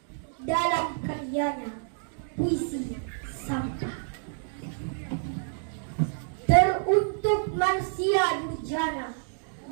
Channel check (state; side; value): silent; left; digital silence